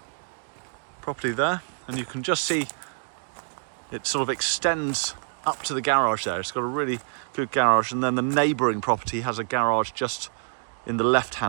property there, and you can just see it sort of extends up to the garage there. It's got a really good garage, and then the neighbouring property has a garage just in the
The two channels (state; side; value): silent; left; digital silence